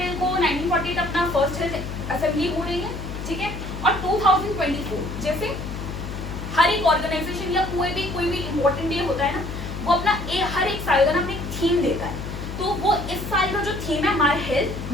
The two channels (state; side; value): noise; left; hum, 7 dB below the sound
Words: को 1948 अपना फर्स्ट हेल्थ असेंबली हो रही है। ठीक है, और 2024 जैसे हर एक ऑर्गेनाइजेशन या कोई भी इम्पोर्टेंट डे होता है ना, वो अपना हर एक साल का ना अपने थीम देता है। तो वो इस साल का जो थीम है माय हेल्थ